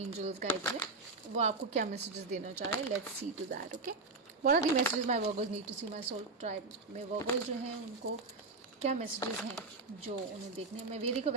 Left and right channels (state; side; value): quieter; left; 3.6 dB